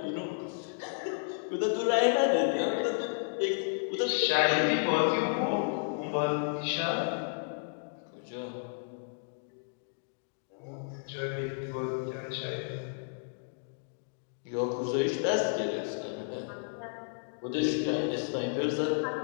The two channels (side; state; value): right; silent; digital silence